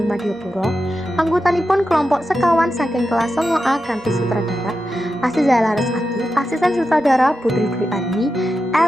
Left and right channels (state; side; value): normal; both; correlation 0.90